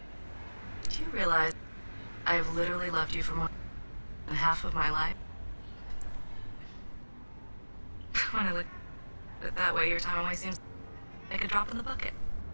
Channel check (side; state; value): both; inverted; correlation -1.00